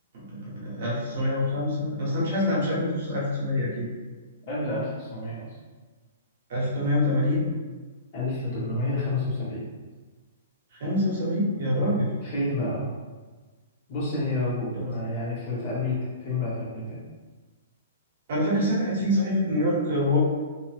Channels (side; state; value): both; inverted; correlation -0.37